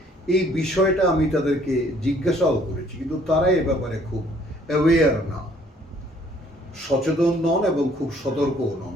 এই বিষয়টা আমি তাদেরকে জিজ্ঞাসাও করেছি, কিন্তু তারা এ ব্যাপারে খুব অ্যাওয়্যার না, সচেতন নন এবং খুব সতর্কও নন।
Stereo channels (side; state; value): both; normal; correlation 0.61